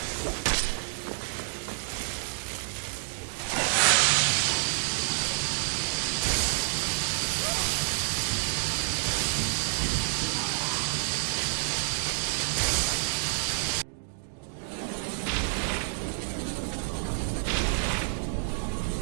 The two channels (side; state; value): left; silent; digital silence